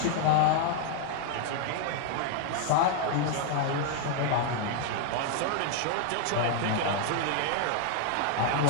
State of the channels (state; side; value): different; both; correlation 0.00